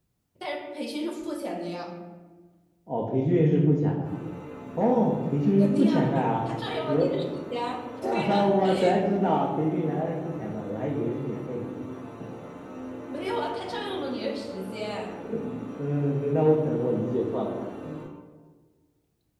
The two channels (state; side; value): identical; both; correlation 1.00